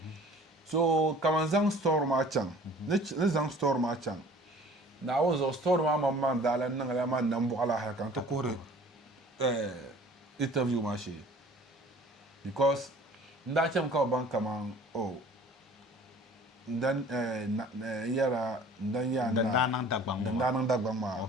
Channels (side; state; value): both; normal; correlation 0.49